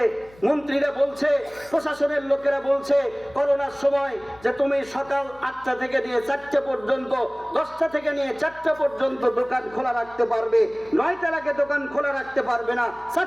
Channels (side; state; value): left; noise; hum, 25 dB below the sound